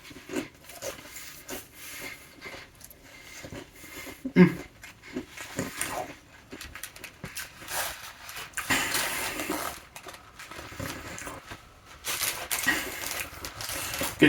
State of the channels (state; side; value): identical; both; correlation 1.00